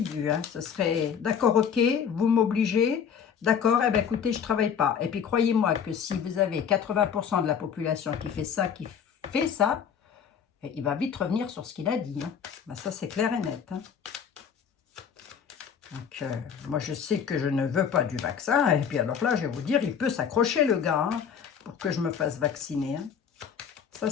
vu. Hein. Ce serait, d'accord, ok, vous m'obligez. D'accord, eh bien, écoutez, je ne travaille pas. Et puis, croyez-moi que si vous avez 80% de la population qui fait ça, il va vite revenir sur ce qu'il a dit. Hein. Ben, ça, c'est clair et net. Hein. Donc, moi, je sais que je ne veux pas du vaccin. Et puis, alors là, je vais vous dire, il peut s'accrocher, le gars, hein, pour que je me fasse vacciner. Hein. Ça,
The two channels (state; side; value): quieter; right; 7.5 dB